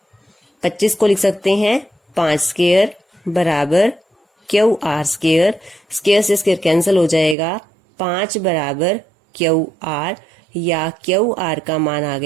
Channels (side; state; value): left; drops out; at 7.4 s